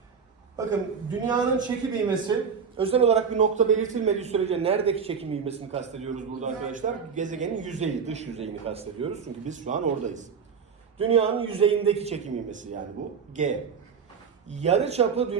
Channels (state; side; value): quieter; left; 6.3 dB